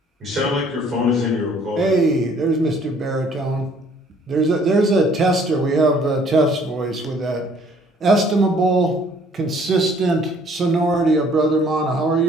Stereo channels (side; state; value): both; normal; correlation 0.59